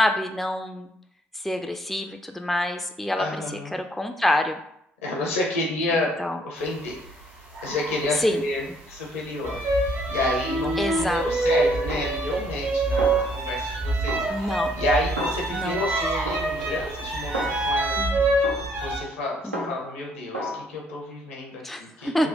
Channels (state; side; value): normal; both; correlation 0.66